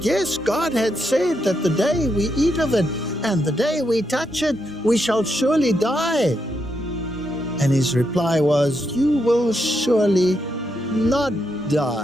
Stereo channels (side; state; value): both; normal; correlation 0.81